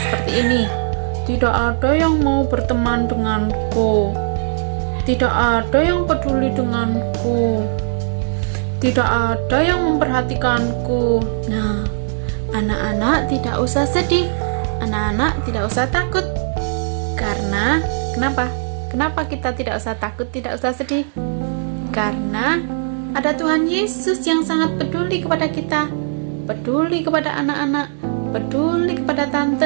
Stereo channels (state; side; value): silent; left; 66 dB below the other